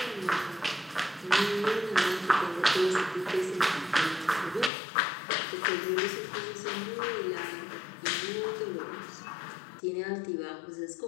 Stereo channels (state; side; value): drops out; right; at 4.7 s